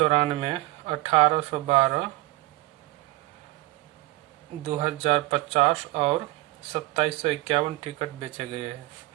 1812, 2050 और 2751 टिकट बेचे गए हैं।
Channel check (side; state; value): left; quieter; 20.0 dB